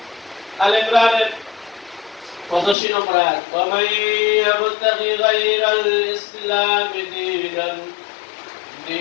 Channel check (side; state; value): right; drops out; at 2.8 s